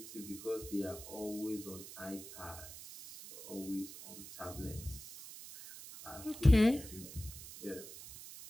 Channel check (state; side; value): noise; right; hiss, 13 dB below the sound